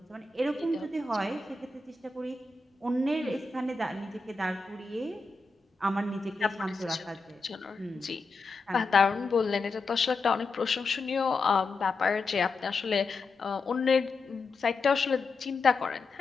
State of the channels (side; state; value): right; quieter; 3.9 dB